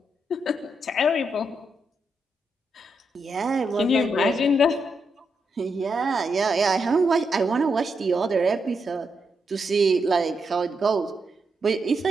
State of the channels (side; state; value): both; normal; correlation 0.82